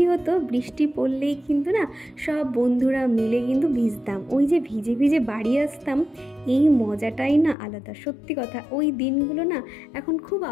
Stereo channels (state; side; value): drops out; right; at 7.6 s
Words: হতো, বৃষ্টি পড়লেই কিন্তু না সব বন্ধুরা মিলে কিন্তু ভিজতাম, ওই যে ভিজে ভিজে বাড়ি আসতাম, এই মজাটাই না আলাদা। সত্যি কথা, ওই দিনগুলো না এখন খুব